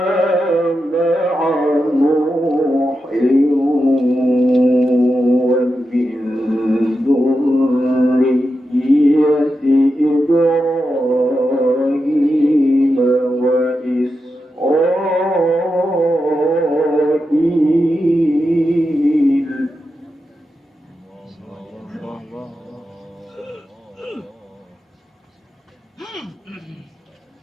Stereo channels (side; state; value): both; normal; correlation 0.89